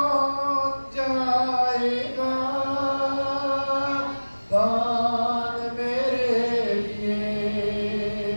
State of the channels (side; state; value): both; inverted; correlation -1.00